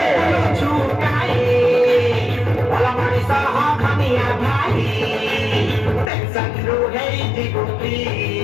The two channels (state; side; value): drops out; right; at 6.1 s